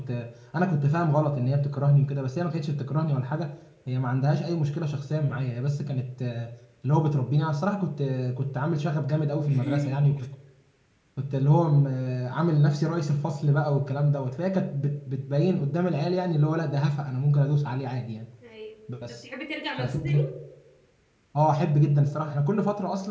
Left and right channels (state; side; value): identical; both; correlation 1.00